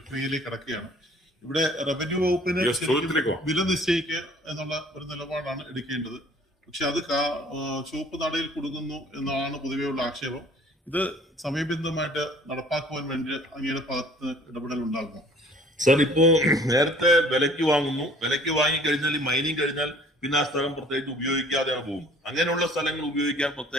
കടക്കുകയാണ്. ഇവിടെ റവന്യൂ വകുപ്പിന് വില നിശ്ചയിക്കുക എന്നുള്ള ഒരു നിലപാടാണ് എടുക്കേണ്ടത്. പക്ഷെ അത് ചുവപ്പ് നടയിൽ കൊടുക്കുന്നു എന്നാണ് പൊതുവെയുള്ള ആക്ഷേപം. ഇത് സമയബന്ധിതമായിട്ട് നടപ്പാക്കുവാൻ വേണ്ടി അങ്ങയുടെ ഭാഗത്ത് ഇടപെടൽ ഉണ്ടാകുമോ? സർ, ഇപ്പോ നേരത്തെ വിലയ്ക്ക് വാങ്ങുന്നു. വിലയ്ക്ക് വാങ്ങിക്കഴിഞ്ഞാൽ ഈ മൈനിങ് കഴിഞ്ഞാൽ പിന്നെ ആ സ്ഥലം പ്രത്യേകിച്ച് ഉപയോഗിക്കാതെയാണ് പോകുന്നത്. അങ്ങനെയുള്ള സ്ഥലങ്ങൾ ഉപയോഗിക്കാൻ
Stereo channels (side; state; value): both; normal; correlation 0.53